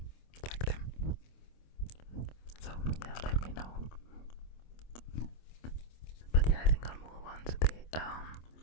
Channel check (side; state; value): right; late; 26 ms